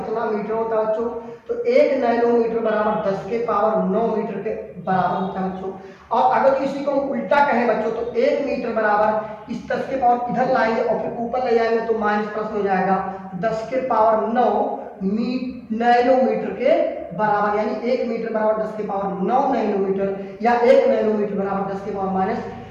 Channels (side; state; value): both; identical; correlation 1.00